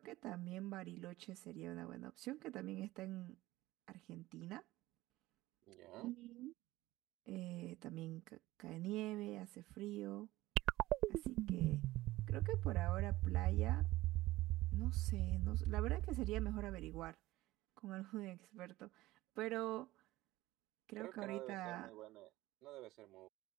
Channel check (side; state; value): left; quieter; 17.6 dB